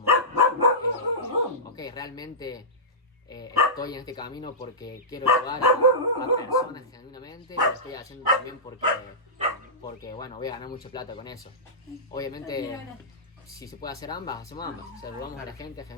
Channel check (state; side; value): normal; both; correlation -0.16